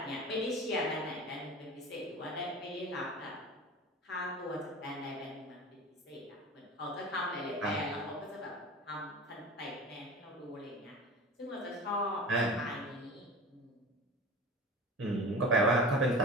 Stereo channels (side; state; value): both; normal; correlation 0.34